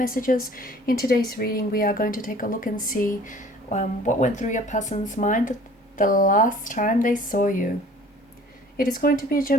In today's reading, we are going to take a look and see what went through your person's mind the last time they saw you. It is going to be a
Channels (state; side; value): normal; both; correlation 0.50